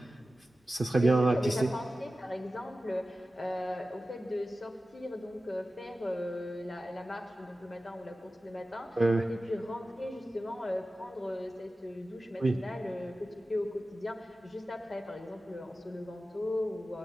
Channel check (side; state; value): both; normal; correlation 0.94